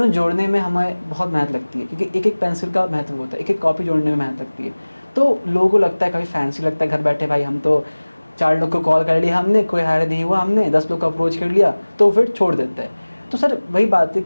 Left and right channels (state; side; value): inverted; both; correlation -1.00